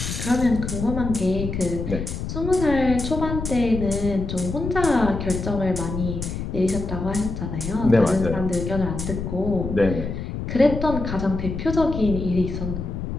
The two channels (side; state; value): left; noise; rumble, 5 dB below the sound